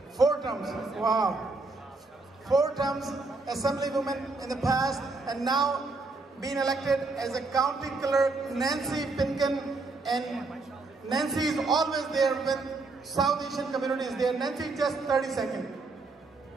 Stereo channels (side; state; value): left; quieter; 3.6 dB